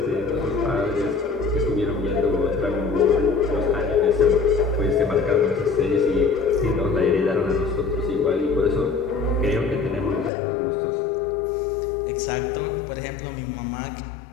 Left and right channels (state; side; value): drops out; right; at 10.3 s